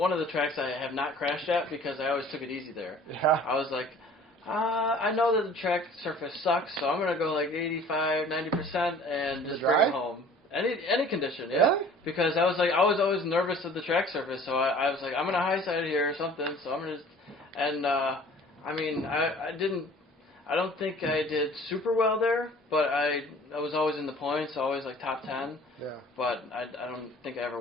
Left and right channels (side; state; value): both; normal; correlation 0.49